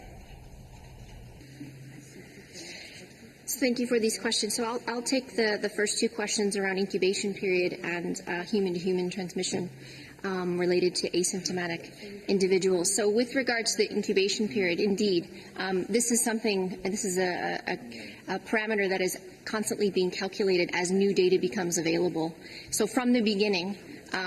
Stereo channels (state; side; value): identical; both; correlation 1.00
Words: Thank you for these questions. So I'll take the first 2 questions around incubation period and human-to-human transmission related to asymptomatic individuals. So with regards to the incubation period, indeed, this is a parameter that is constantly being calculated as new data becomes available. So from the beginning,